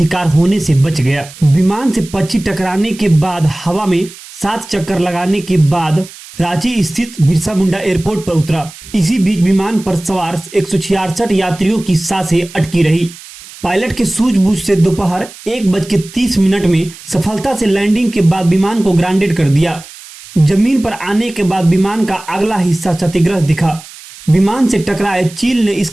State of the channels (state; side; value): noise; right; hiss, 18 dB below the sound